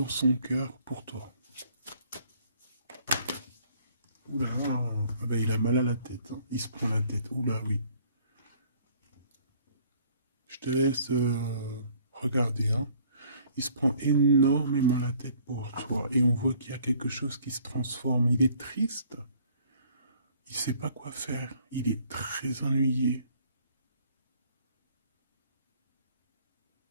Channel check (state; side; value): inverted; both; correlation -0.58